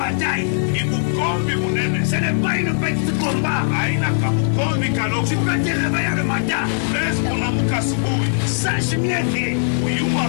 Ce n'est pas une petite combat. Tu peux te réveiller le matin. Sache bien que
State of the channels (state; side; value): silent; right; digital silence